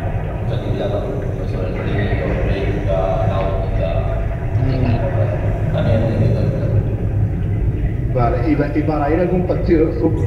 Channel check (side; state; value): both; identical; correlation 1.00